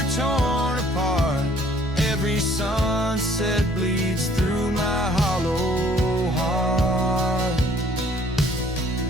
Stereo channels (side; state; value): both; normal; correlation 0.59